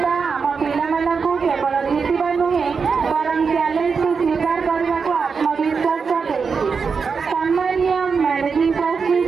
ଆମ ପିଲାମାନଙ୍କୁ କେବଳ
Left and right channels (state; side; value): quieter; left; 5.4 dB